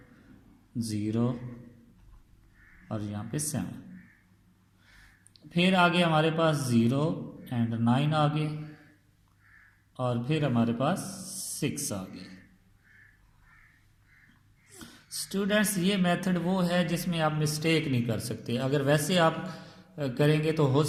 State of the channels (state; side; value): identical; both; correlation 1.00